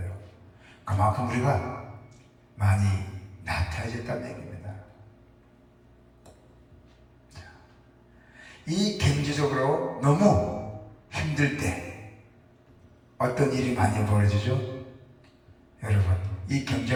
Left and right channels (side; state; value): both; identical; correlation 1.00